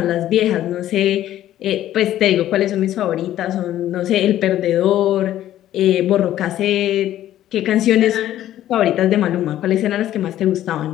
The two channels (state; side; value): quieter; right; 12.7 dB